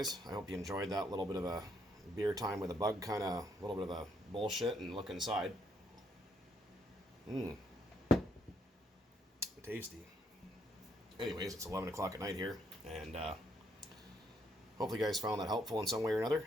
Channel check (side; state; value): both; normal; correlation 0.72